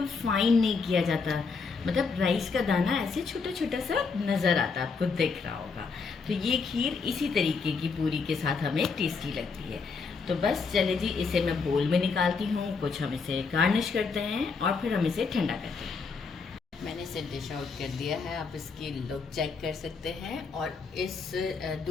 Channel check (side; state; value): right; quieter; 4.9 dB